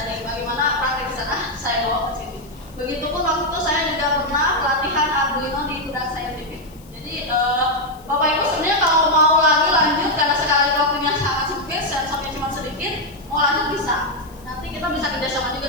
nih bagaimana praktik di sana saya bawa ke sini. Begitupun waktu itu saya juga pernah pelatihan Arduino di Budak Scientific. Jadi Bapak Ibu sebenarnya kalau mau lagi lanjut karena sekali waktunya sangat sempit, sensornya cuma sedikit, mau lanjut bisa. Nanti kita bisa kerjasama juga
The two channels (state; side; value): noise; left; hiss, 26 dB below the sound